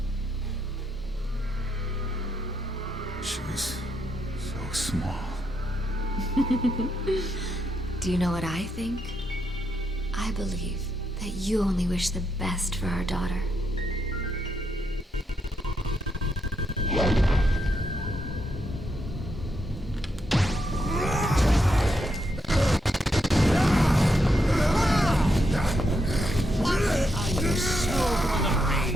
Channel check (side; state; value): both; normal; correlation 0.80